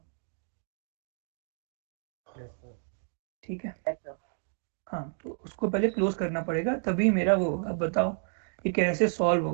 Yes sir. ठीक है, Yes, sir. हाँ, तो उसको पहले क्लोज करना पड़ेगा, तभी मेरा वो होगा। अब बताओ ये कैसे सॉल्व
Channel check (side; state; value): left; silent; 57 dB below the other